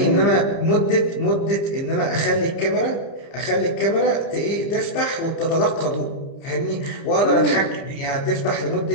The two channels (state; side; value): late; right; 30 ms